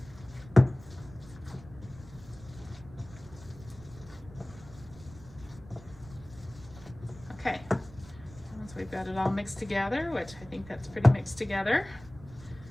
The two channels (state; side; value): noise; right; rumble, 19 dB below the sound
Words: Okay, once we've got it all mixed together, which I think that's pretty mixed together,